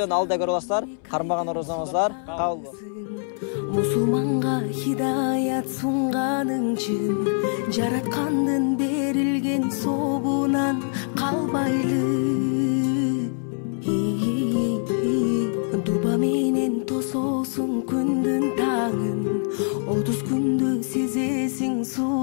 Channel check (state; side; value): silent; right; 63 dB below the other